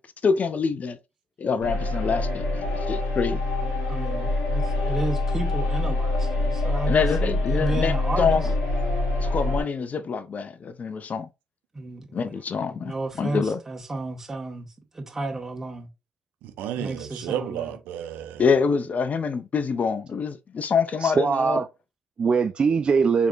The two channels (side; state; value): both; normal; correlation 0.76